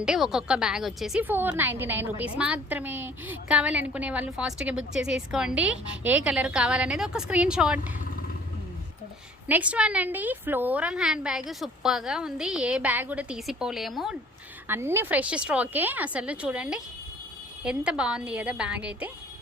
ఒక్కొక్క బ్యాగ్ వచ్చేసి 499 రూపీస్ మాత్రమే. కావాలనుకునే వాళ్ళు ఫాస్ట్గా బుక్ చేసేసుకోండి. ఏ కలర్ కావాలనేది ఒక స్క్రీన్ షాట్. నెక్స్ట్ వన్ అండి, ఫ్లోరల్ హ్యాండ్ బ్యాగ్. సూపర్గా ఉంది. ఏ బ్యాగ్ కూడా తీసిపోలేము. అన్ని ఫ్రెష్ స్టాకే. అసలు చూడండి ఎంత బాగుంది కదా బ్యాగ్ అయితే.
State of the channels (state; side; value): normal; both; correlation 0.53